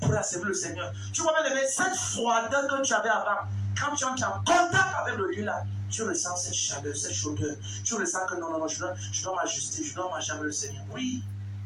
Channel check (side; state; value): both; identical; correlation 1.00